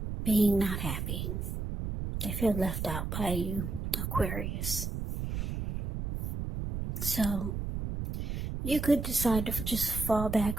being not happy. They feel left out by you, Aquarius. So you could decide to just fall back,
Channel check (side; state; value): right; noise; rumble, 3 dB below the sound